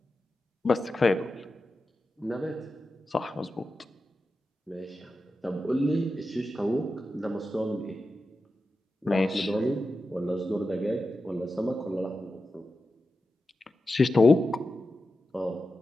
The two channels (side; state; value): both; normal; correlation 0.91